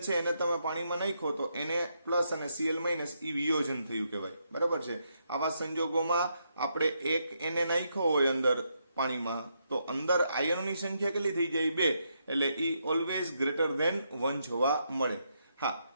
છે એને તમે પાણીમાં નાખો તો Na પ્લસ અને Cl માઇનસ એ વિયોજન થયું કહેવાય. બરાબર છે. આવા સંજોગોમાં આપણે એક Na નાખ્યો હોય અંદર પાણીમાં તો અંદર આયનોની સંખ્યા કેટલી થઈ જાય? 2. એટલે ઈ ઓલવેઝ ગ્રેટર ધેન 1 જોવા મળે. હા,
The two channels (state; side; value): inverted; both; correlation -0.79